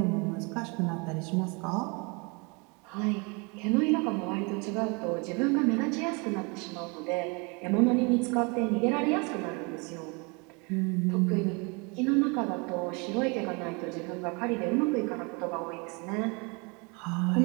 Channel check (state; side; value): quieter; left; 30.6 dB